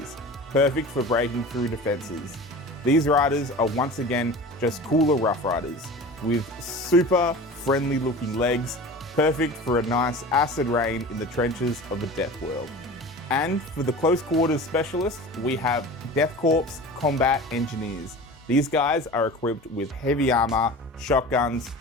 perfect for breaking through defenses. These riders are once again just cooler rough riders, with super friendly looking legs, perfect for a nice acid rain in the trenches of a death world. And for the close quarters specialists, we have Death Korps Combat Engineers. These guys are equipped with heavy armor, shotguns,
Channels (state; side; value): normal; both; correlation 0.36